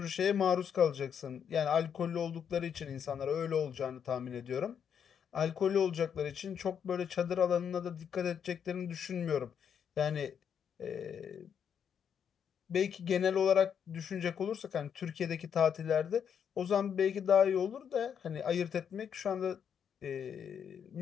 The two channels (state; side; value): quieter; right; 7.9 dB